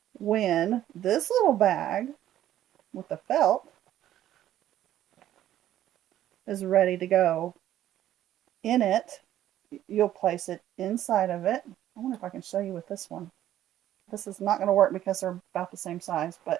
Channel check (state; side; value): quieter; left; 12.4 dB